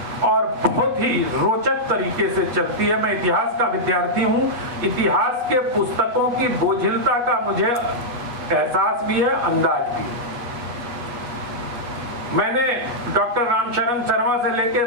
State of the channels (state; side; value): late; left; 8.3 ms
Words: और बहुत ही रोचक तरीके से चलती है। मैं इतिहास का विद्यार्थी हूँ, इतिहास के पुस्तकों की बोझिलता का मुझे एहसास भी है, अंदाज भी। मैंने डॉक्टर रामशरण शर्मा से लेकर